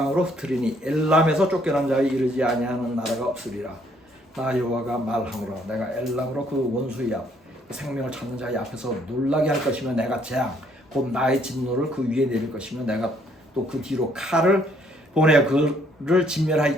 흩으리니 엘람에서 쫓겨난 자에 이르지 아니하는 나라가 없으리라. 나 여호와가 말하노라 내가 엘람으로 그 원수의 앞 생명을 찾는 자의 앞에서 놀라게 할 것이며 내가 재앙 곧 나의 진노를 그 위에 내릴 것이며 내가 또 그 뒤로 칼을 보내 그를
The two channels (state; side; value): normal; both; correlation 0.66